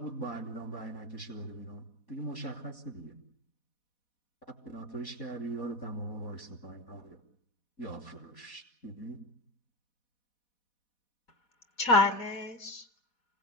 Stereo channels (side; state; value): right; late; 4.1 ms